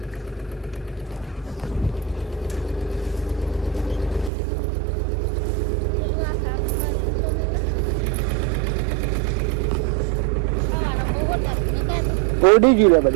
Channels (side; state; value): left; drops out; at 4.3 s